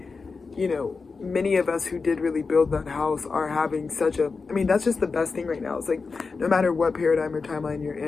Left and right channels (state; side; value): quieter; right; 4.5 dB